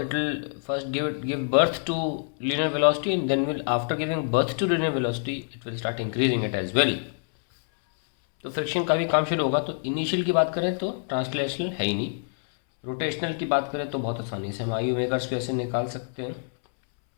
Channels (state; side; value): silent; right; 61 dB below the other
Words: it will first give birth to linear velocity, and then will after giving birth to linear velocity it will start increasing it as well. तो friction का भी काम शुरू होगा। तो initial की बात करें तो ट्रांसलेशनल है ही नहीं, रोटेशनल की बात करें तो बहुत आसानी से हम आई ओमेगा स्क्वायर से निकाल सकते हैं,